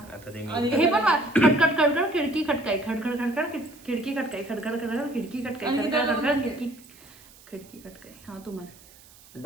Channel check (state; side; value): noise; right; hiss, 24 dB below the sound